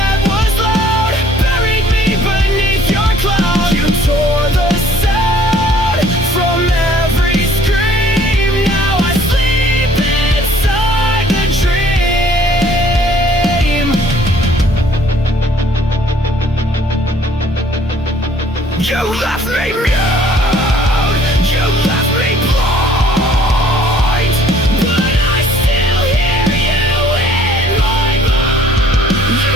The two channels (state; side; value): normal; both; correlation 0.58